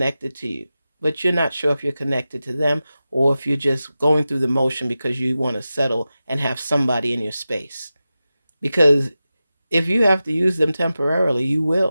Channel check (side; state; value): both; inverted; correlation -0.94